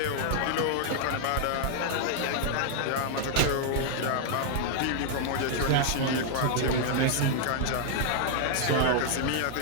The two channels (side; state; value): both; different; correlation 0.00